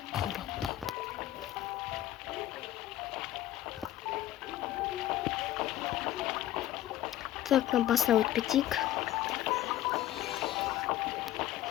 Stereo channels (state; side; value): quieter; right; 13.4 dB